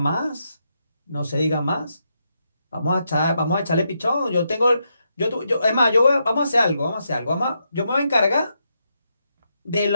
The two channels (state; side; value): inverted; both; correlation -0.82